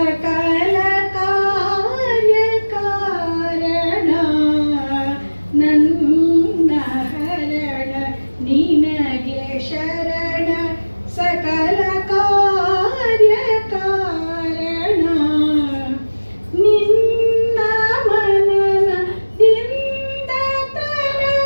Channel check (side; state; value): both; inverted; correlation -1.00